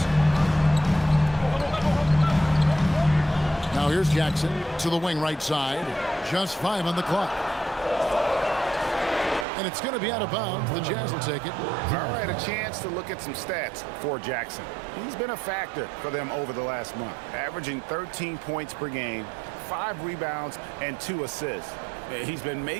Now here's Jackson to the wing right side. Just 5 on the clock. And it's going to be out of bounds. The Jazz will take it. All right, a chance to look at some stats for Jackson. He's been a factor for them over the last month, averaging 13 points per game, 5 rebounds, and 2 assists. He's been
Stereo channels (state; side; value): drops out; left; at 9.5 s